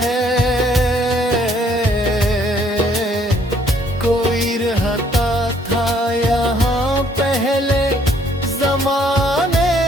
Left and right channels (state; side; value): normal; both; correlation 0.64